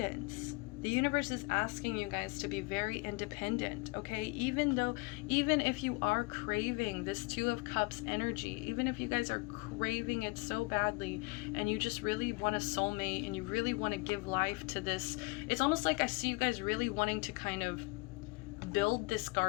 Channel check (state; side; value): quieter; right; 26.5 dB